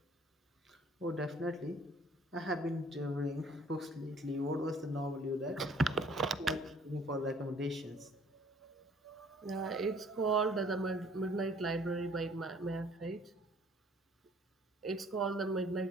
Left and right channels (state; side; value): normal; both; correlation 0.57